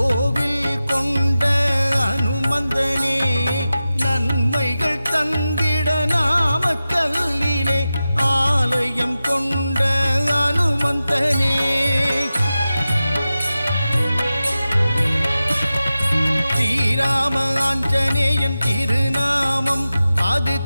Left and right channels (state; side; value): inverted; both; correlation -0.94